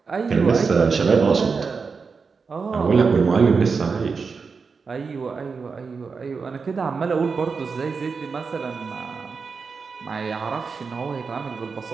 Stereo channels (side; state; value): left; quieter; 5.1 dB